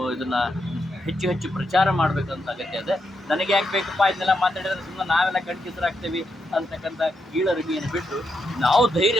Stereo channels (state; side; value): normal; both; correlation 0.82